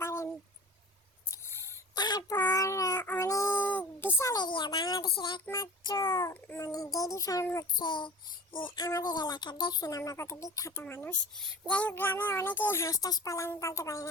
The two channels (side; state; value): both; normal; correlation 0.38